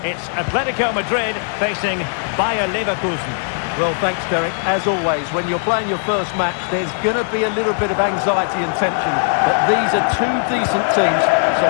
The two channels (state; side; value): silent; right; digital silence